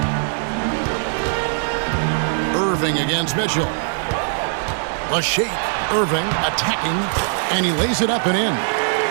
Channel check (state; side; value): silent; left; digital silence